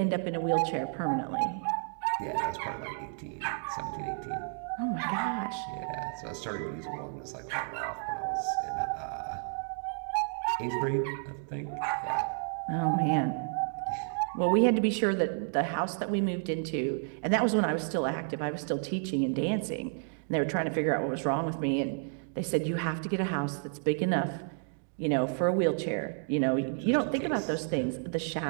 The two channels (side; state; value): left; silent; 57 dB below the other